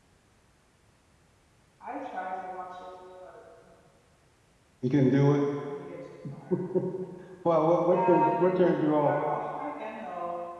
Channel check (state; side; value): identical; both; correlation 1.00